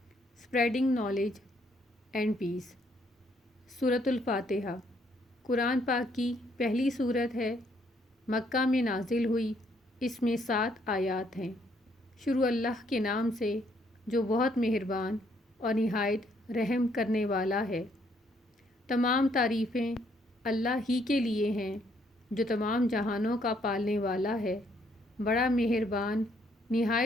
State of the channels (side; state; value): both; normal; correlation 0.69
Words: اسپریڈنگ نالج اینڈ پیس۔ سورۃ الفاتحہ قرآن پاک کی پہلی سورت ہے، مکہ میں نازل ہوئی۔ اس میں 7 آیات ہیں۔ شروع اللہ کے نام سے جو بہت مہربان اور نہایت رحم کرنے والا ہے۔ تمام تعریفیں اللہ ہی کے لیے ہیں جو تمام جہانوں کا پالنے والا ہے، بڑا مہربان،